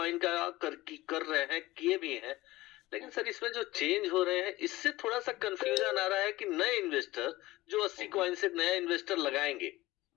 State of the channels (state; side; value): quieter; right; 18.4 dB